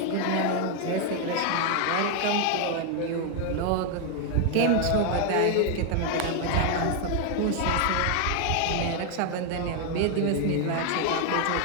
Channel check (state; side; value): different; both; correlation 0.00